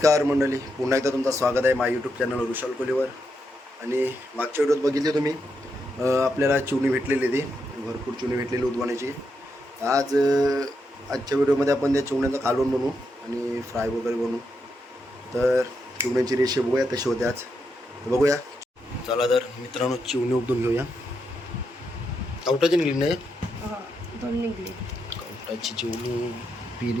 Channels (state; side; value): normal; both; correlation 0.83